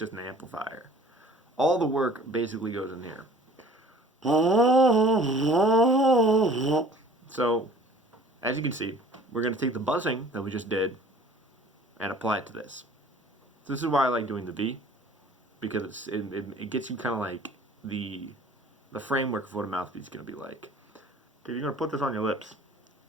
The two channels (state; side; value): normal; both; correlation 0.50